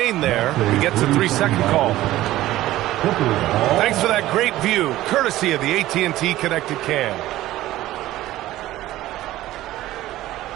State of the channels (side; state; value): left; quieter; 15.4 dB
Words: there. He gets a 3-second call. Thanks for that great view, courtesy of the AT&T Connected Cam.